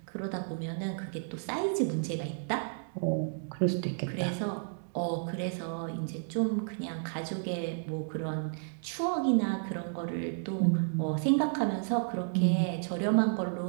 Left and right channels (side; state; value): left; silent; digital silence